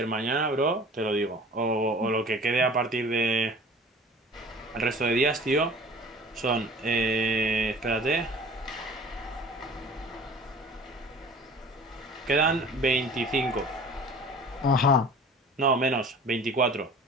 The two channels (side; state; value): both; normal; correlation 0.44